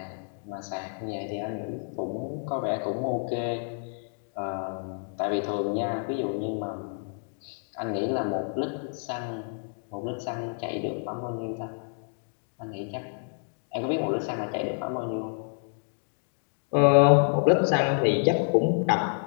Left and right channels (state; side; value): silent; right; 59 dB below the other